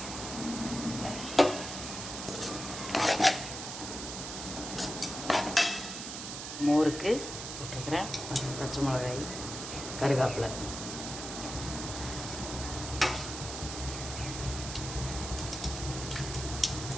மோருக்கு போட்டுருக்கிறேன். பச்சை மிளகாய், கருவேப்பிலை.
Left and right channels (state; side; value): noise; right; hiss, 7 dB below the sound